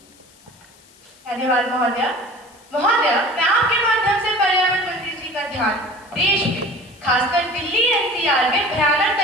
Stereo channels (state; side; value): noise; left; hiss, 27 dB below the sound